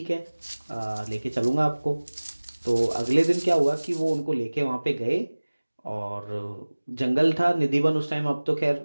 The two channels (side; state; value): both; inverted; correlation -1.00